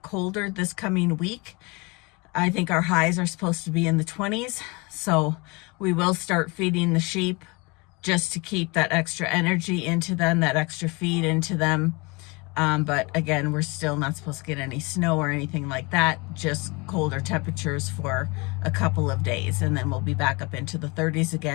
colder this coming week. I think our highs are supposed to be in the 20s, so we will start feeding the sheep just to keep that extra energy into them, that extra feed into them. But again, we're still not supposed to get any snow or anything like that, just colder temperatures for a couple of days, and then we'll be back up into the 30s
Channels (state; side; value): quieter; right; 27.3 dB